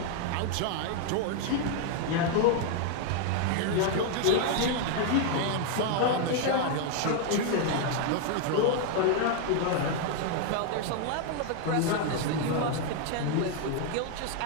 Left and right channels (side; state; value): both; different; correlation 0.00